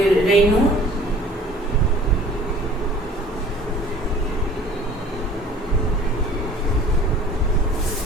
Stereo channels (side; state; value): both; normal; correlation 0.49